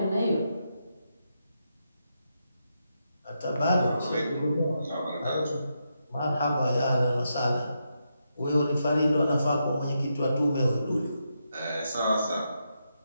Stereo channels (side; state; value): both; inverted; correlation -0.83